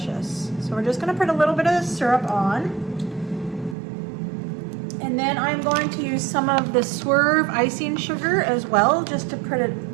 So we're just going to put a little bit of the syrup on. And then I'm going to use some of the Swerve Icing sugar as well, just to put it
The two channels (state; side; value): drops out; left; at 3.8 s